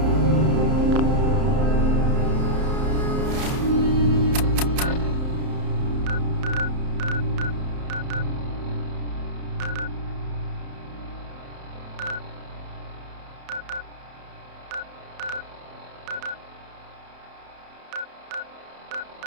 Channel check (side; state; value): left; late; 31 ms